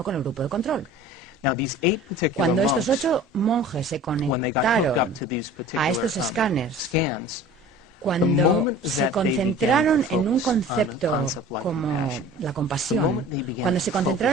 con el grupo de control. Cuando estos 8 monjes se conectaron a estos escáneres, cuando se concentraron en un concepto como la compasión, cuando se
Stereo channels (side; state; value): both; normal; correlation 0.43